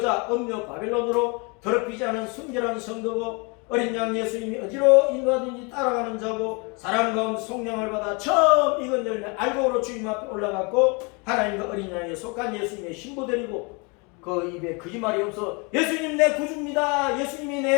음녀 바벨론으로 더럽히지 않은 순결한 성도고 어린 양 예수님이 어디로 인도하든지 따라가는 자고 사람 가운데 성령을 받아 처음 익은 열매 알곡으로 주님 앞에 올라갔고 하나님과 어린 양에 속한 예수님의 신부들이고 그 입에 거짓말이 없어 예수님 내 구주입니다. 예수님이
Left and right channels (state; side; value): quieter; right; 31.1 dB